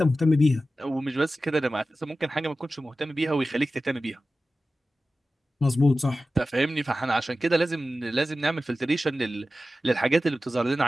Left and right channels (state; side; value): normal; both; correlation 0.94